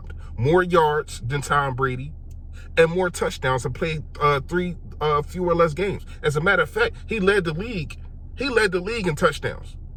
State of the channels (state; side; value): identical; both; correlation 1.00